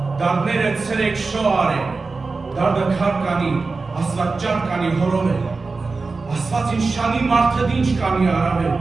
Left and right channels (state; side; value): quieter; left; 4.0 dB